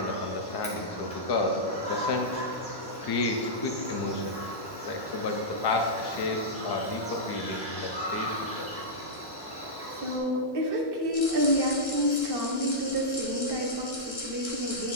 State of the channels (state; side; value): late; right; 1.1 ms